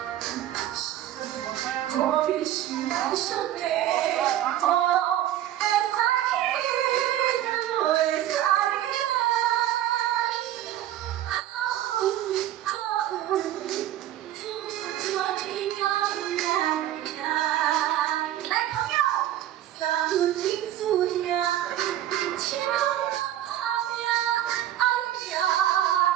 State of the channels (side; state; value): left; quieter; 12.6 dB